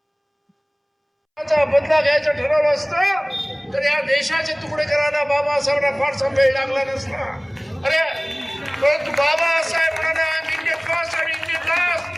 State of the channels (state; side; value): identical; both; correlation 1.00